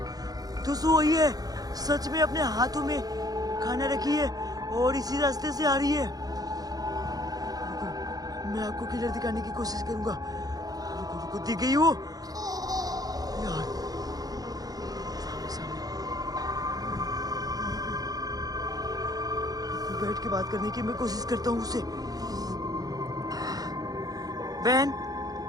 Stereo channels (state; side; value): late; left; 0.18 ms